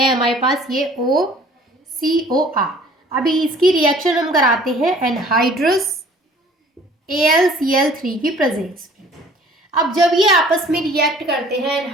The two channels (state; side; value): normal; both; correlation 0.52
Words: हमारे पास ये OCOR। अभी इसकी रिएक्शन हम कराते हैं एनहाइड्रस AlCl3 की प्रेजेंस में। अब जब ये आपस में रिएक्ट करते हैं